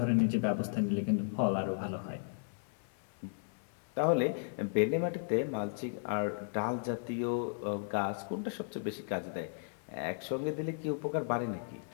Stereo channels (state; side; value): silent; right; 54 dB below the other